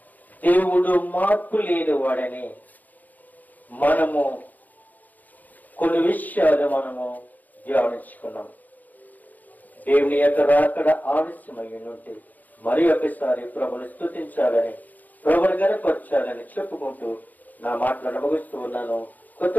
దేవుడు మార్పు లేని వాడని మనము కొన్ని విషయాలు మనము ధ్యానించుకున్నాం. దేవుని యొక్క రాకడ ఆలస్యమై ఉంటే మరి ఒకసారి ప్రభుని స్తుతించాలని, ప్రభుని గణపరచాలని చెప్పుకుంటూ నా మాటలను ముగిస్తూ ఉన్నాను. కొత్త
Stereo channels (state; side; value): late; right; 0.082 ms